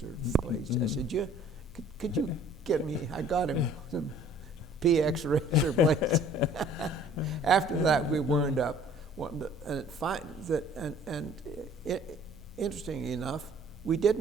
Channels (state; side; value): normal; both; correlation 0.53